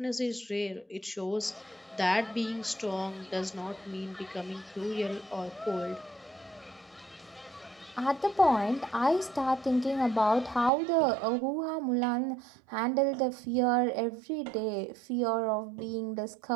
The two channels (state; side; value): drops out; left; at 10.7 s